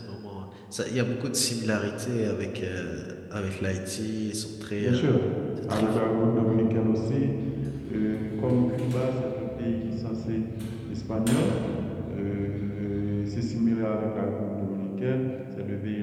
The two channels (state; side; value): identical; both; correlation 1.00